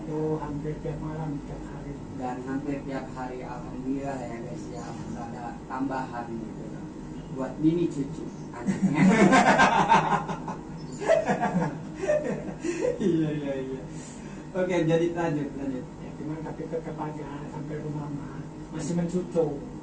Itu hampir tiap malam, tiap hari. Dan hampir tiap hari alhamdulillah ya guys ya, ada tambahan gitu loh. Buat Mimi cucu anaknya. Iya. Oke, jadi lanjut. Ya, cuman tapi tetap aja sampai rumah masih mencucu.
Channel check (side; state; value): both; identical; correlation 1.00